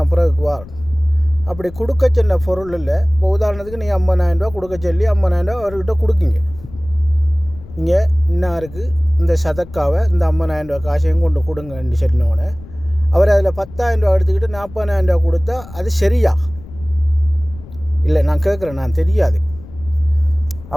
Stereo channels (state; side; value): noise; left; rumble, 17 dB below the sound